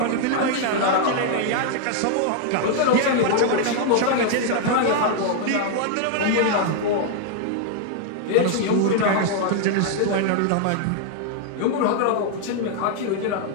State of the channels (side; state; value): both; different; correlation 0.00